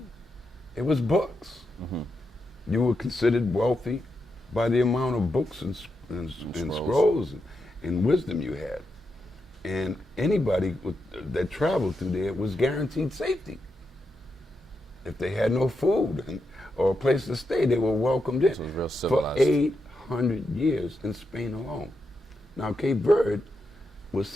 it was books. You were considered wealthy by the amount of books and scrolls and wisdom you had. And anybody that traveled through there was guaranteed safety. If they had no food or a place to stay, they were welcomed in. So it was real for civilized. 800 years in Spain alone. Now, Cape Verde was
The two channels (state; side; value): normal; both; correlation 0.85